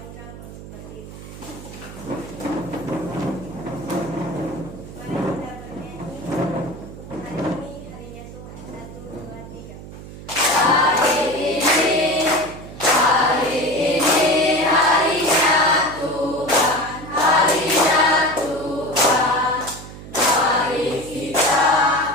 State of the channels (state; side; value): noise; right; hum, 14 dB below the sound